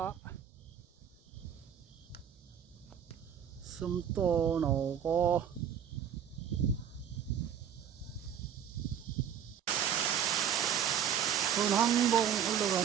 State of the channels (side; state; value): left; quieter; 8.9 dB